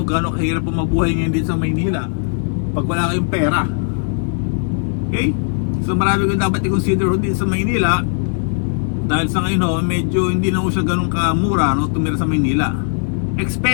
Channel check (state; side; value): silent; right; digital silence